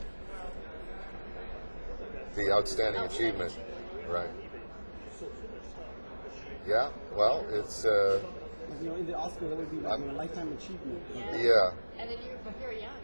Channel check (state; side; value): inverted; both; correlation -1.00